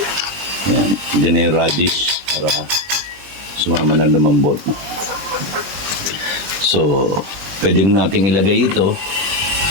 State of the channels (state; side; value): late; left; 20 ms